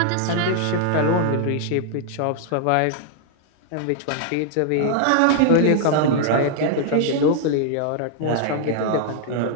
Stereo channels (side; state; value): both; different; correlation -0.01